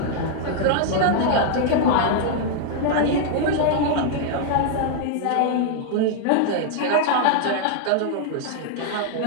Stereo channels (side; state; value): both; different; correlation 0.00